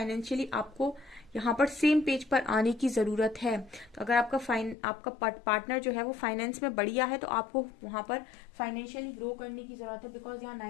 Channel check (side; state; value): right; drops out; at 4.8 s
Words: आपको यहाँ पर सेम पेज पर आने की जरूरत है। तो अगर आपका पार्टनर जो है वो फाइनेंस में बढ़िया है तो आपको वहां पर फाइनेंशियली ग्रो करने की जरूरत है, बिकॉज यहाँ